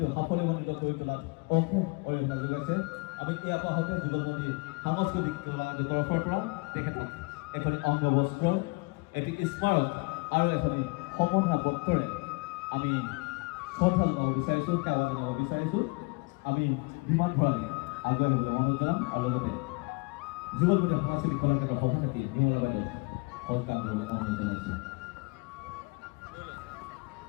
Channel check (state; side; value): quieter; right; 27.5 dB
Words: সাফল্যমণ্ডিত কৰি তোলাত অশেষ অৰিহণা যোগাইছে। আমি ইয়াৰ পাছতে যুগলবন্দী সাংস্কৃতিক কলা কেন্দ্ৰৰ তৰফৰ পৰা তেখেতক এখন অংগবস্ত্ৰ, এটি স্মাৰক আৰু এখন সম্বৰ্ধনা পত্ৰৰে আমি শ্ৰদ্ধা জনাব বিচাৰিছোঁ, সেৱা জনাব বিচাৰিছোঁ। আমি বিমান ভৰালি আগুৱাই আহিবলৈ অনুৰোধ জনাম আৰু লগতে যুগলবন্দী সাংস্কৃতিক কলা কেন্দ্ৰৰ সভাপতি নিৰ্মলা বাইদেউ সৎকাৰ কৰিবলৈ অনুৰোধ জনাইছোঁ।